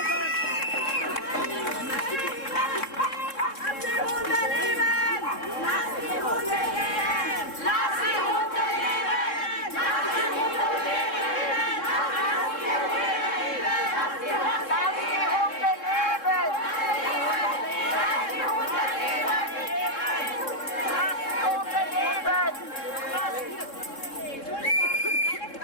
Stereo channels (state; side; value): late; right; 3.7 ms